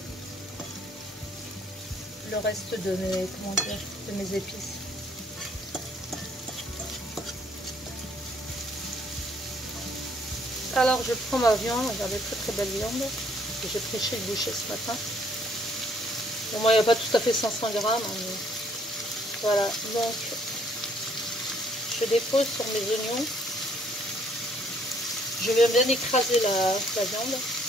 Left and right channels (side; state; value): both; normal; correlation 0.65